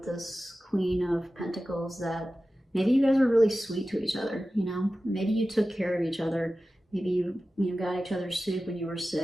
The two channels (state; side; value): normal; both; correlation 0.95